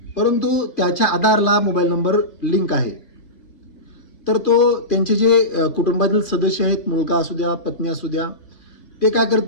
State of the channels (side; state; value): right; late; 2.5 ms